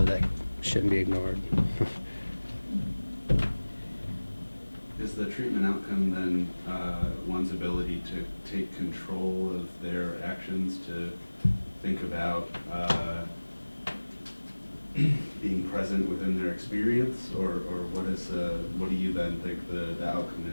that shouldn't be ignored. Is the treatment outcome then one's ability to take control of their actions, to think about being present within their experience, or what do you then think the outcome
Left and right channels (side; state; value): both; inverted; correlation -1.00